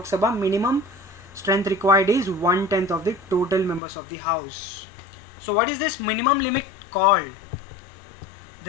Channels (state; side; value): drops out; right; at 3.8 s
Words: Sabha, minimum strength required is 1/10 of the total members of the House. So what is this minimum limit called?